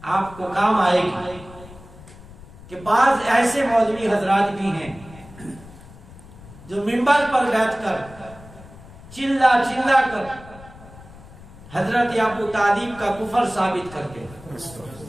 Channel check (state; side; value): noise; left; rumble, 19 dB below the sound